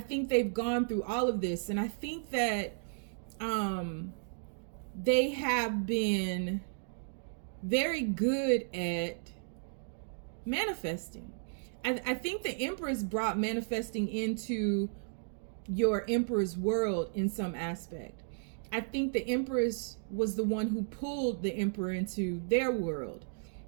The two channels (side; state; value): left; silent; digital silence